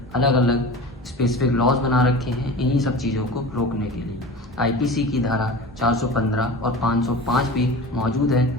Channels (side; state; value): both; normal; correlation 0.35